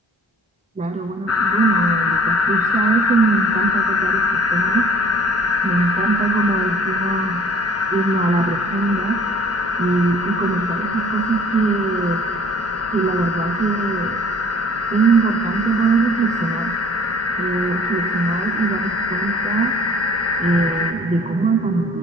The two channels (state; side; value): normal; both; correlation 0.53